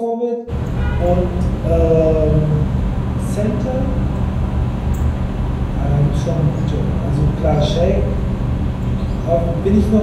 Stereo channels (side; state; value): both; identical; correlation 1.00